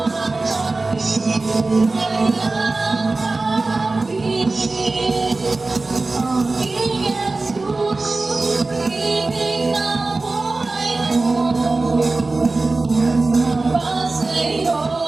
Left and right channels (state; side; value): quieter; left; 3.4 dB